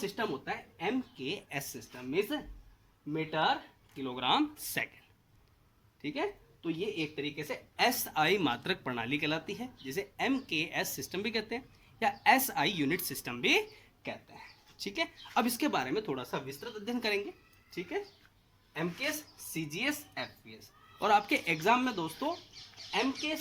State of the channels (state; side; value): identical; both; correlation 1.00